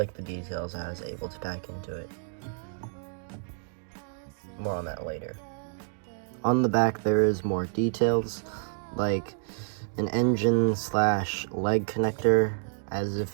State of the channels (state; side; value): silent; left; digital silence